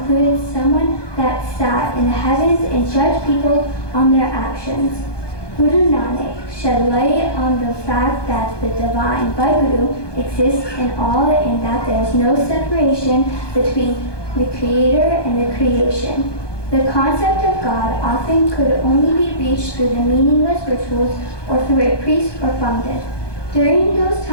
someone that sat in the heavens and judged people on their actions. Guru Nanak shed light on the fact that the divine Vaheguru exists in all and that there is no separation between the Creator and the creation. The concept of God often could only be reached through the meaningless rituals or through a priest or pandit. During those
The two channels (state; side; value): late; right; 1.2 ms